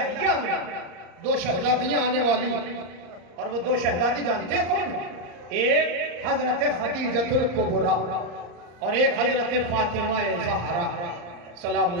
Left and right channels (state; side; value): late; left; 34 ms